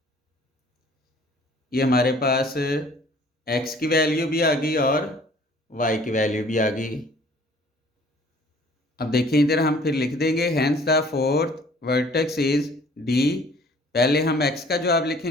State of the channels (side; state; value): both; normal; correlation 0.54